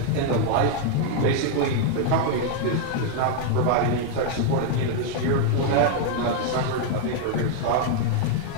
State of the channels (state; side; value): different; both; correlation 0.00